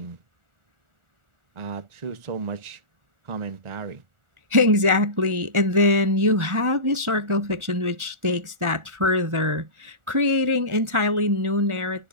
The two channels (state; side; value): late; left; 1.4 ms